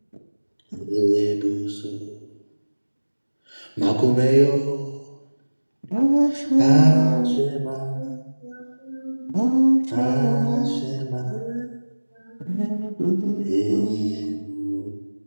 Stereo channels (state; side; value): inverted; both; correlation -1.00